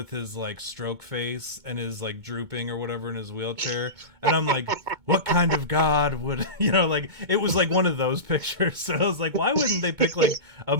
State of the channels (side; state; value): left; late; 2.2 ms